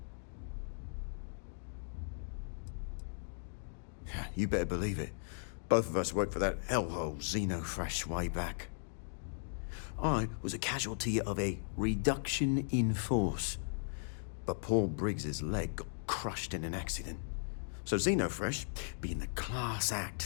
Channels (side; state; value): right; silent; digital silence